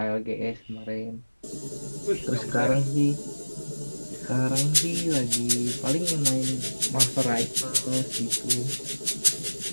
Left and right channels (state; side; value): inverted; both; correlation -1.00